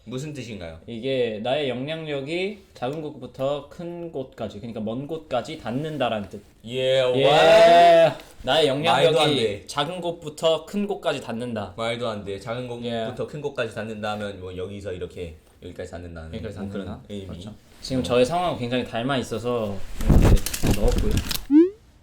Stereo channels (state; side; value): identical; both; correlation 1.00